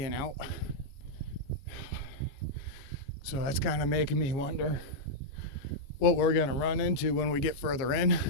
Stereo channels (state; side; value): late; right; 14 ms